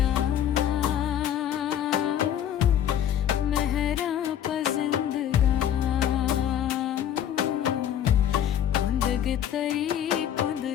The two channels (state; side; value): quieter; right; 10.2 dB